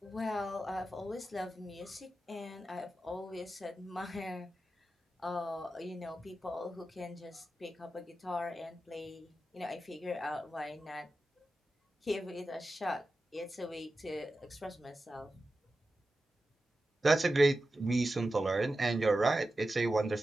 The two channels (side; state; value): both; normal; correlation 0.92